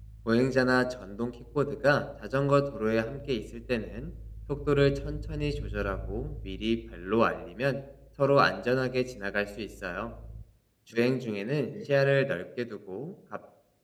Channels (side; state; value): both; identical; correlation 1.00